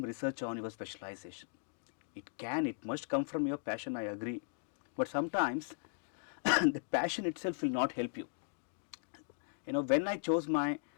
research on your specialization. It must come from your passion, I agree. But sometimes the passion itself will not help you. When I chose my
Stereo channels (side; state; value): right; silent; digital silence